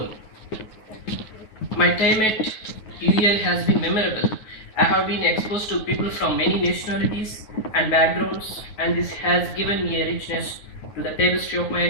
My time at UEL has been memorable. I have been exposed to people from many nationalities and backgrounds, and this has given me a richness to the tapestry of my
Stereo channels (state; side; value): late; right; 9.6 ms